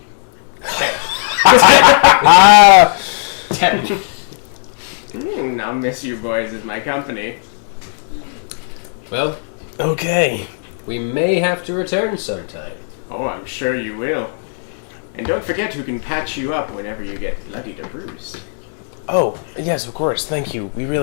Ah, 10. I'll miss you boys as my company. Well, okay. we may have to return sometime. Oh, I'm sure you will. And don't forget who can patch you up whenever you get bloodied or bruised. Oh, yes, of course. Thank you. We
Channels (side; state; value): right; silent; digital silence